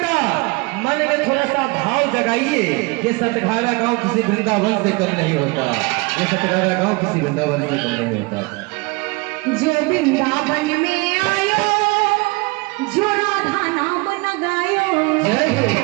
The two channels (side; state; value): left; quieter; 26.6 dB